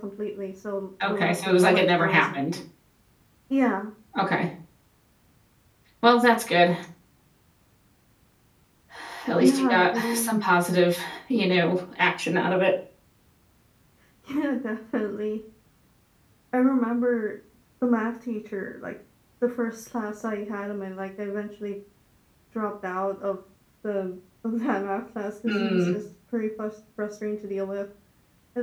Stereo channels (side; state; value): both; identical; correlation 1.00